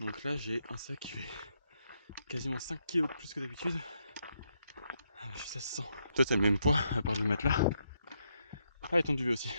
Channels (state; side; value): inverted; both; correlation -0.78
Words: là, j'ai un sac qui fait quasiment 5 kg de plus que d'habitude. Ça se sent. Toi, t'as le même poids, à part le matelas. Ah, et ton duvet aussi.